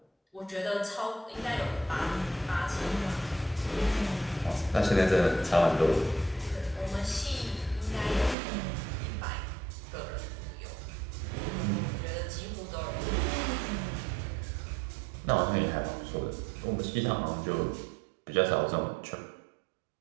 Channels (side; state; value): left; drops out; at 8.3 s